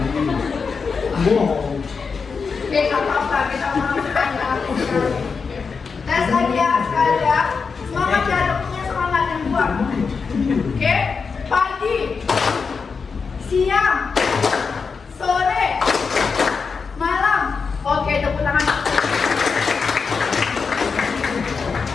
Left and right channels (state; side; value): quieter; right; 5.2 dB